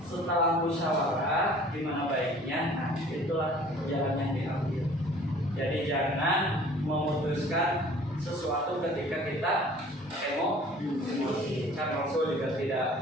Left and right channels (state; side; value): normal; both; correlation 0.50